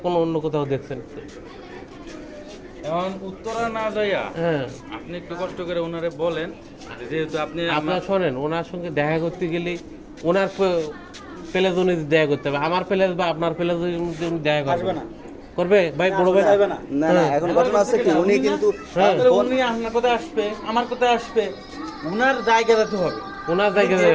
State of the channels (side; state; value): both; identical; correlation 1.00